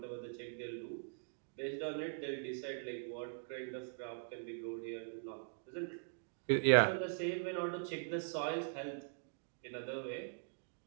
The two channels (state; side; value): silent; left; digital silence